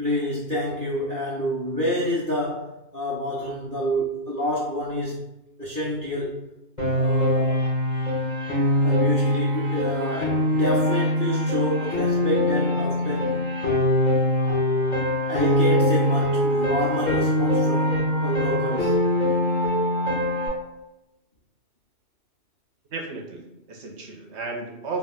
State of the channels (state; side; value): late; left; 2.4 ms